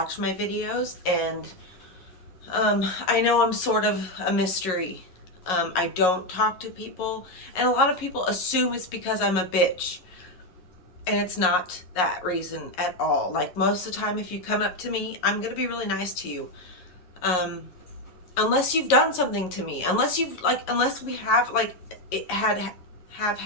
my videos, and I know I'm sort of a mystery. I don't talk to people, and a lot of people assume it's because I'm a bitch. And it's not that reason at all. Like, most of the time, if you come up to me, I'm gonna be really nice to you. Um, Unless you've done something to me, unless we have have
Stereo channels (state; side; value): late; right; 11 ms